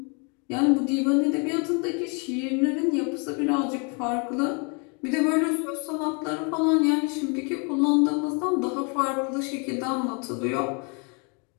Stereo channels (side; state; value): right; quieter; 35.1 dB